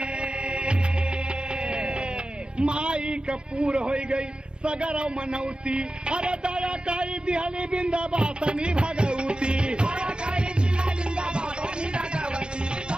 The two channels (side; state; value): left; late; 0.051 ms